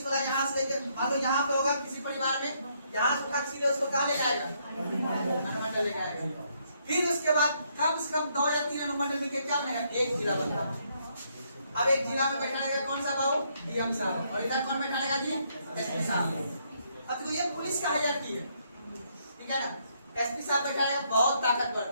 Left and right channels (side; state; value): both; inverted; correlation -0.72